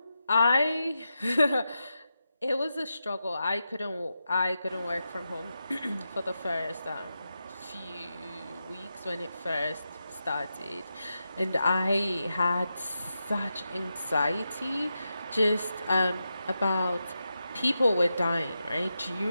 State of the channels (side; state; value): both; inverted; correlation -0.89